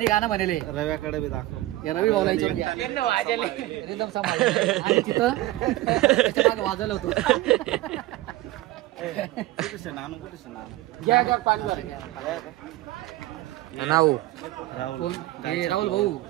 गाणं म्हणले. रव्याकडे बी दाखव, या रवी भाऊला रिदम सांभाळ. आणि तिथं त्याच्या मागे वाजवलं होतं. राहुल भाऊ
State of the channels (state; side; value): quieter; left; 17.1 dB